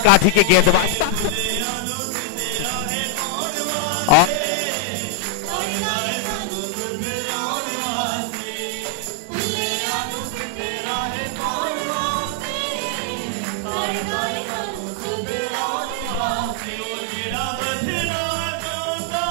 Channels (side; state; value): both; different; correlation 0.00